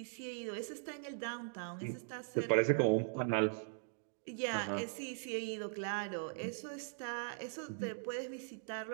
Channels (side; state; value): left; silent; digital silence